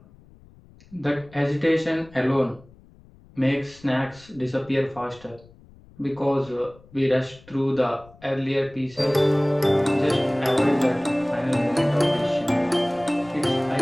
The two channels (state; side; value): noise; left; rumble, 25 dB below the sound